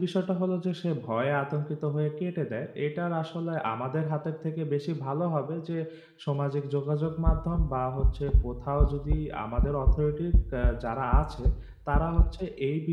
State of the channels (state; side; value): identical; both; correlation 1.00